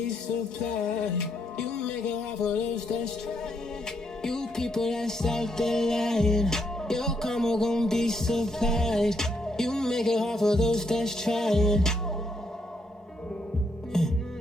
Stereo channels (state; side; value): normal; both; correlation 0.76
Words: supplied. You make it hard for those that's trying. You people that's out there lying, your karma gon' be supplied. You make it hard for those that's trying.